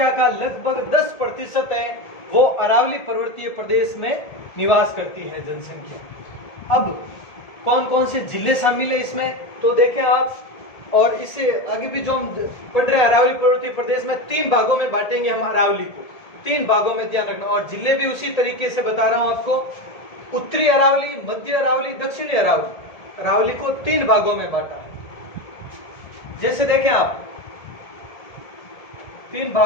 का लगभग 10% है वो अरावली पर्वतीय प्रदेश में निवास करती है जनसंख्या। अब कौन कौन से जिले शामिल है इसमें, तो देखें आप। और इससे आगे भी जो हम पढ़ रहे हैं अरावली पर्वतीय प्रदेश में 3 भागों में बांटेंगे हम अरावली को, 3 भागों में, ध्यान रखना। और जिले भी उसी तरीके से बता रहा हूं आपको, उत्तरी अरावली, मध्य अरावली, दक्षिणी अरावली। अरावली को 3 भागों में बांटा है। जैसे देखें आप, 3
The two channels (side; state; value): right; late; 1.7 ms